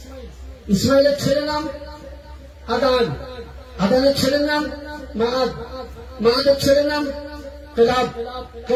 ইসমাইলের ছেলের নাম আদান, আদানের ছেলের নাম মাআদ, মাআদের ছেলের নাম কেলাব,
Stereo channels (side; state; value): both; identical; correlation 1.00